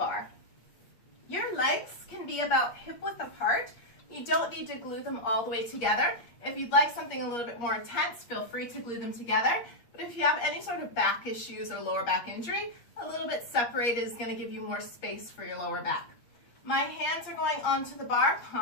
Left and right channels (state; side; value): late; right; 8.5 ms